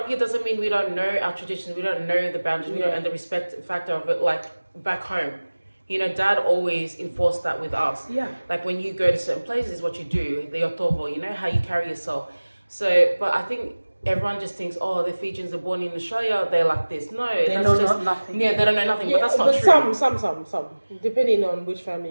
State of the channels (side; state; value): both; inverted; correlation -1.00